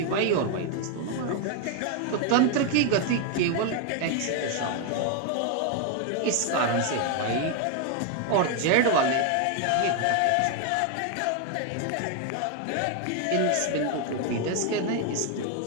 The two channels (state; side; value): different; both; correlation 0.01